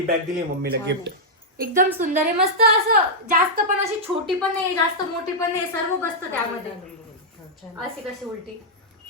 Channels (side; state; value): both; normal; correlation -0.08